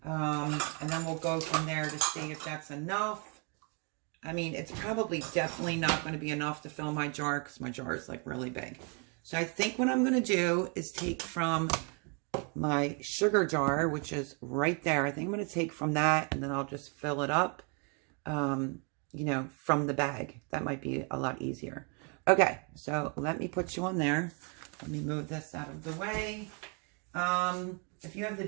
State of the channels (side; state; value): left; quieter; 36.2 dB